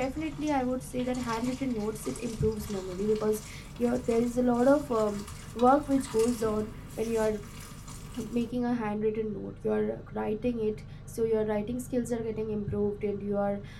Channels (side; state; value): both; identical; correlation 1.00